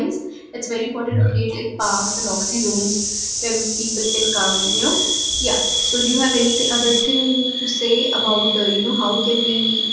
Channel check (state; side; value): identical; both; correlation 1.00